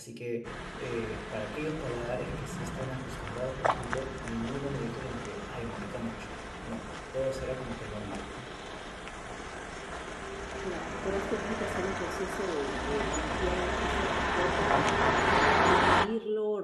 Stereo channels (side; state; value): both; identical; correlation 1.00